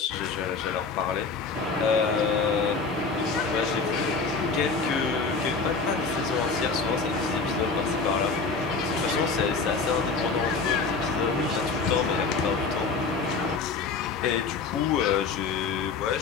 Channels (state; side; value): quieter; right; 4.6 dB